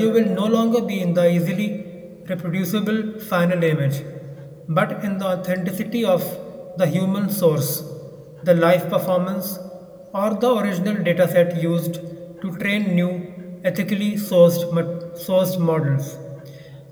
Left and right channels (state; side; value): identical; both; correlation 1.00